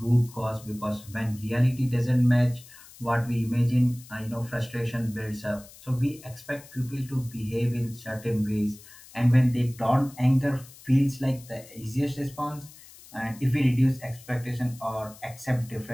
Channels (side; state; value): left; noise; hiss, 21 dB below the sound